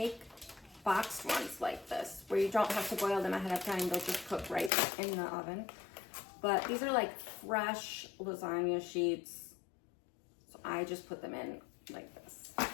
boxed ones like this, where you don't have to boil them ahead of time. They'll just cook right in the oven. But these are like fresh lasagna sheets. So I just put them in like this.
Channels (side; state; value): right; drops out; at 4.7 s